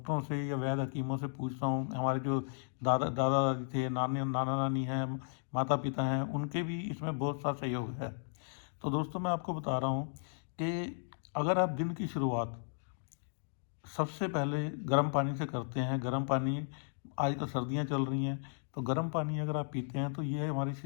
से या वैद्य हकीमों से पूछता हूँ। हमारे जो दादा दादी थे, नाना नानी हैं, माता पिता हैं, उनके भी इसमें बहुत सा सहयोग है। तो दोस्तों, मैं आपको बता रहा हूँ कि अगर आप दिन की शुरुआत सबसे पहले गर्म पानी से करते हैं। गर्म पानी, आज तो सर्दियाँ चल रही हैं, तो गर्म पानी अगर आप पीते हैं तो ये हमारे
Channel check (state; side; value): silent; right; digital silence